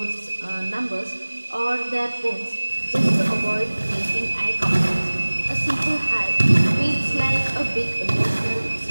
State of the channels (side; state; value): both; inverted; correlation -1.00